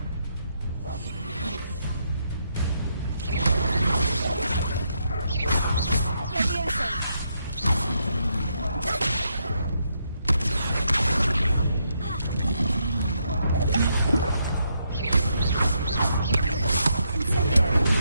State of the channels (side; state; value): both; inverted; correlation -0.78